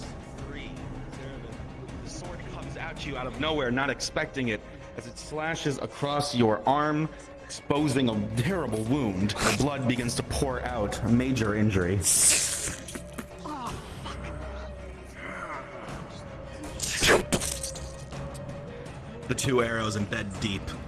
the sword comes at you out of nowhere, not expecting it, as it slashes across your arm, exposing a terrible wound. The blood begins to pour out, a major injury. The 2 arrows embed deep.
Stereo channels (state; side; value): identical; both; correlation 1.00